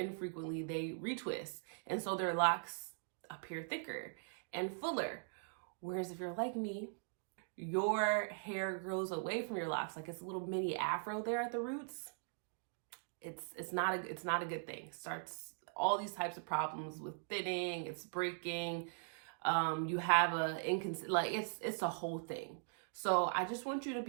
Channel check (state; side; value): silent; left; digital silence